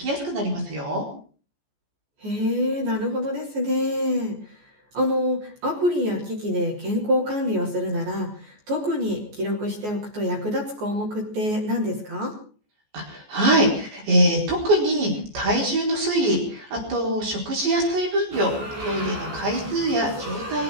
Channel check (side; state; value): left; late; 14 ms